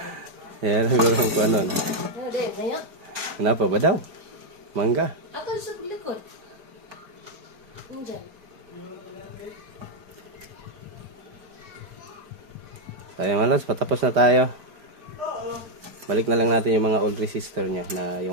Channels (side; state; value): left; late; 5.0 ms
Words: Yan, siguro ko ano. Kenapa ba daw? Mangga. Akan sa likod. Nandiyan. Tayo malas, patapos na tayo. Balik na lang natin yung mga old resistor niya na